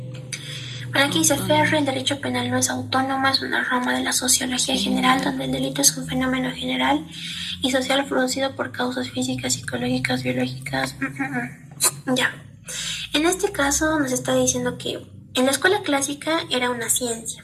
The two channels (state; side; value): identical; both; correlation 1.00